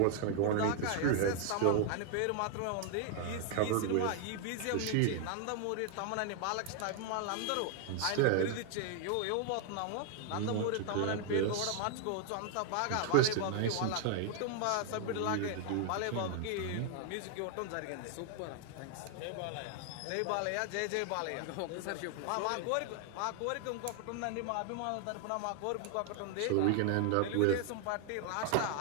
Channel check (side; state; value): both; different; correlation 0.00